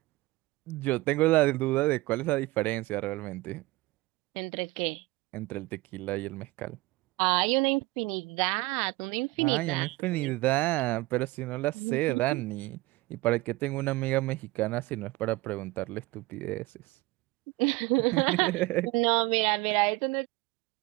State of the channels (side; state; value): left; quieter; 20.6 dB